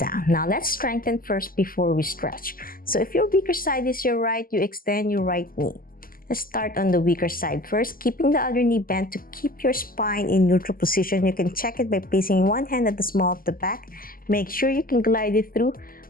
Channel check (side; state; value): right; late; 0.42 ms